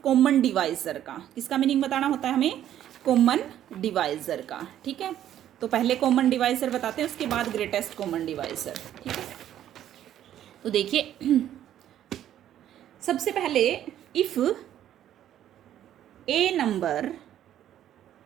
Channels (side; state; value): left; quieter; 11.3 dB